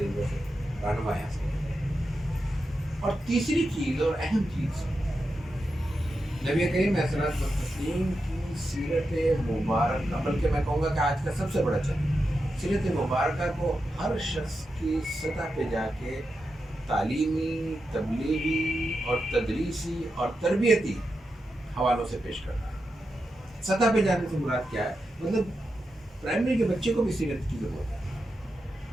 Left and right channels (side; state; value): both; normal; correlation 0.88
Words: سے رہنمائی حاصل کریں۔ اور تیسری چیز اور اہم چیز، نبی کریم علیہ الصلوۃ والتسلیم کی سیرت مبارکہ، بلکہ میں کہوں گا کہ آج کا سب سے بڑا چیلنج، سیرت مبارکہ کو ہر شخص کی سطح پہ جا کے تعلیمی، تبلیغی اور تدریسی اور تربیتی حوالوں سے پیش کرنا ہے۔ سطح پہ جانے سے مراد کیا ہے؟ مطلب پرائمری کے بچے کو بھی سیرت کی ضرورت ہے،